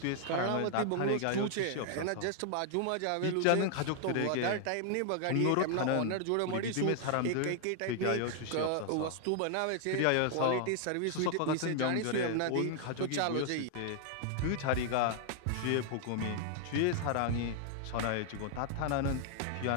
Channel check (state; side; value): different; both; correlation 0.00